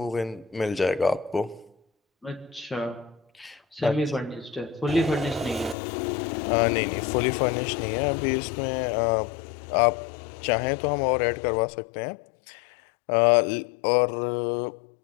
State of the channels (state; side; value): drops out; right; at 5.8 s